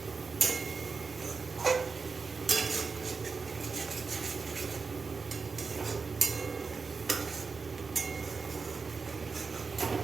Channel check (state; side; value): quieter; left; 4.8 dB